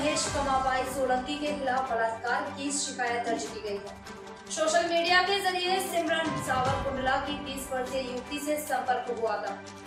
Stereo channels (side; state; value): both; identical; correlation 1.00